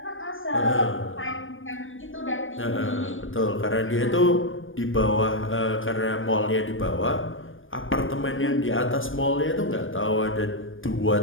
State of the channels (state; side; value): late; right; 0.58 ms